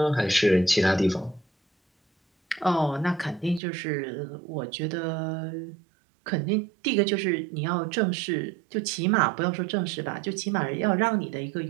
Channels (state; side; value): drops out; left; at 3.6 s